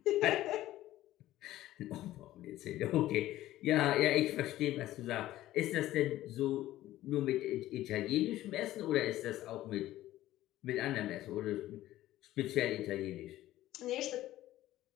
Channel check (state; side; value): quieter; right; 14.8 dB